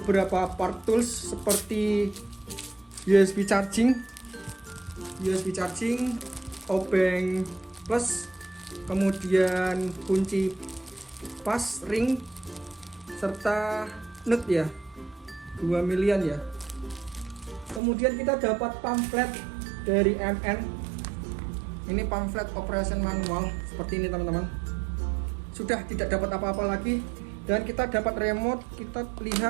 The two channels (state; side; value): drops out; left; at 17.8 s